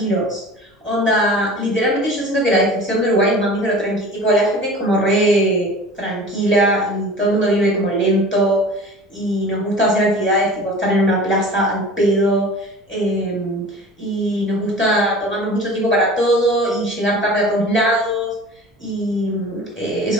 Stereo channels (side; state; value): both; normal; correlation 0.40